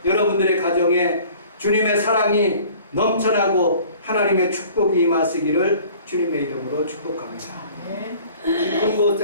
여러분들의 가정에 주님의 사랑이 넘쳐나고 하나님의 축복이 임하시기를 주님의 이름으로 축복합니다. 깊은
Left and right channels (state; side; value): inverted; both; correlation -0.49